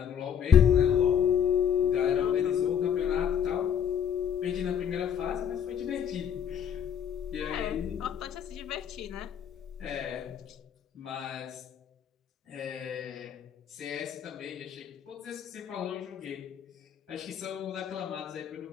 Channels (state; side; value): quieter; right; 8.4 dB